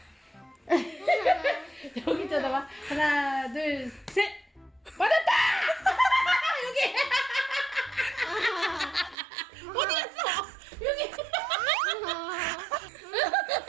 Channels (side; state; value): left; drops out; at 9.2 s